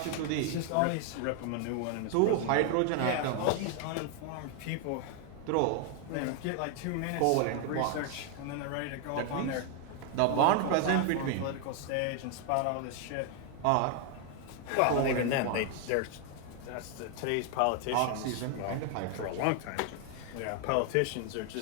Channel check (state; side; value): different; both; correlation 0.00